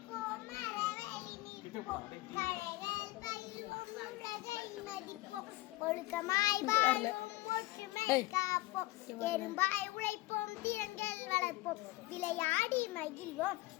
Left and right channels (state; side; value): quieter; right; 19.4 dB